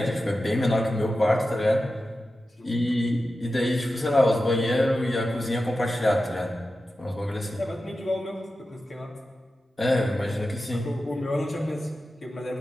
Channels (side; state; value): both; normal; correlation 0.92